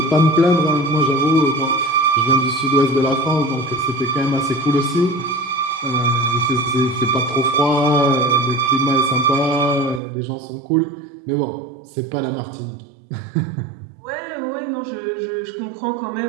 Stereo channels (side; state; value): left; drops out; at 10.0 s